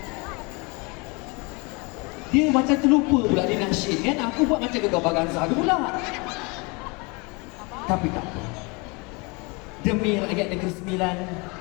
Dia macam terlupa pula dia nasyid kan. Aku buat macam Gegar Baganza pula. Tapi tak apa. Demi rakyat Negeri Sembilan,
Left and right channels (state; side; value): quieter; right; 28.9 dB